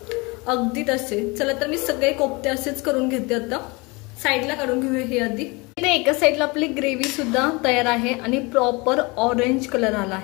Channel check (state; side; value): quieter; right; 26.5 dB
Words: अगदी तसे। चला तर मी सगळे कोफ्ते असेच करून घेते, आता साईडला काढून घेऊया हे आधी। इथे एका साईडला आपली ग्रेव्ही सुद्धा तयार आहे आणि प्रॉपर ऑरेंज कलर आला